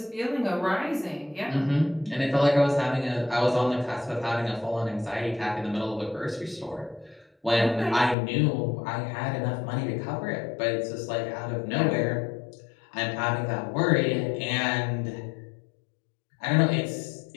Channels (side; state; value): right; drops out; at 8.2 s